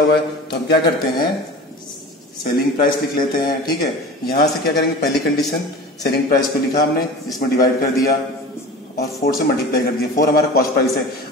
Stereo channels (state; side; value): normal; both; correlation 0.36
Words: है तो हम क्या करते हैं, सेलिंग प्राइस लिख लेते हैं, ठीक है। यहाँ से क्या करेंगे, पहली कंडीशन सेलिंग प्राइस को लिखा हमने, इसमें डिवाइड कर दिया और 4 से मल्टीप्लाई कर दिया। 4 हमारा कॉस्ट प्राइस है।